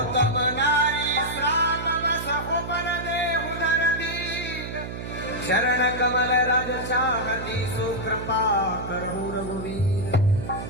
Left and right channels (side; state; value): right; noise; hum, 8 dB below the sound